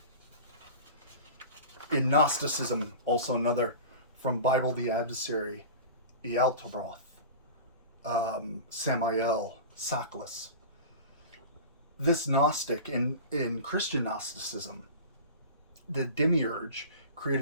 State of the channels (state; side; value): inverted; both; correlation -0.35